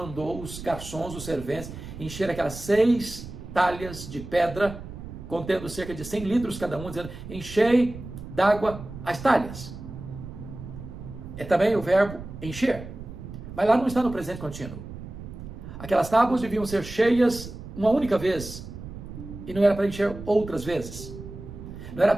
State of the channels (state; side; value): noise; right; rumble, 12 dB below the sound